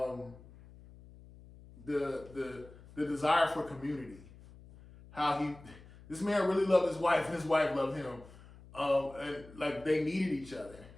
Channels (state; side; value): noise; left; hum, 20 dB below the sound